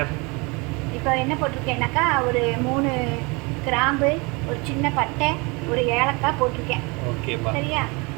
இப்போ என்ன போட்டிருக்கேன்னாக்கா ஒரு 3 கிராம்பு, ஒரு சின்ன பட்டை, ஒரு ஏலக்காய் போட்டிருக்கேன். ஓகேப்பா. சரியா?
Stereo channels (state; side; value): quieter; left; 28.0 dB